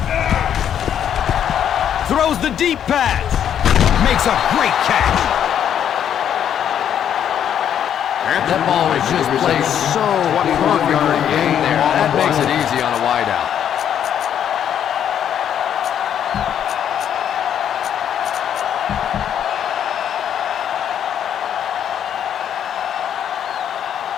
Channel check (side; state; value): right; quieter; 9.4 dB